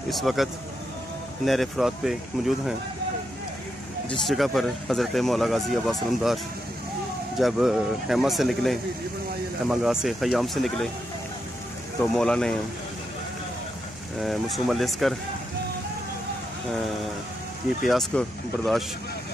इस वक्त नहर फरात पे मौजूद हैं, जिस जगह पर हज़रत मौला गाज़ी अब्बास अलमदार जब हैमा से निकले, हैमागाह से ख़याम से निकले, तो मौला ने मसूम अलअस्कर की प्यास को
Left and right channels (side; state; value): right; noise; hum, 25 dB below the sound